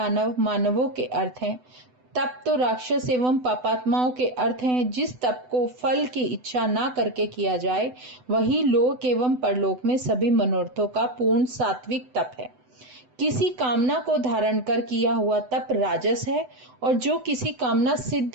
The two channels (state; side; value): late; left; 8.0 ms